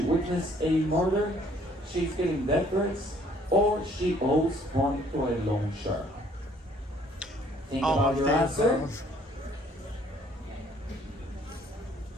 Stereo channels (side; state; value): both; normal; correlation 0.61